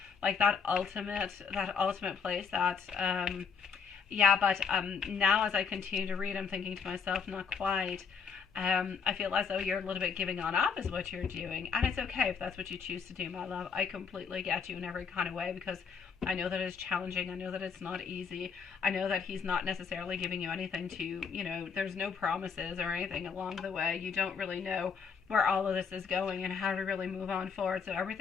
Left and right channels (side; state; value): right; quieter; 6.1 dB